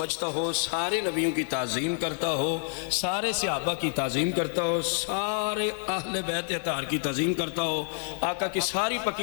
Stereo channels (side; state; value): right; silent; 58 dB below the other